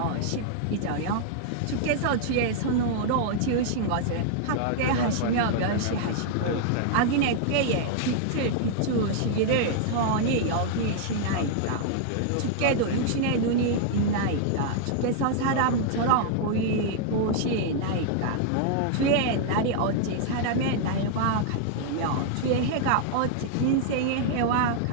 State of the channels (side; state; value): both; different; correlation -0.01